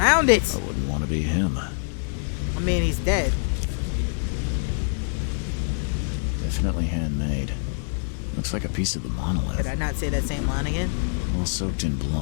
found it. I wouldn't want to be him. I mean, he's dead. Definitely handmade. Looks like a piece of the monolith. Did I not say that same line again? All soaked in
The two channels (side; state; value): right; silent; digital silence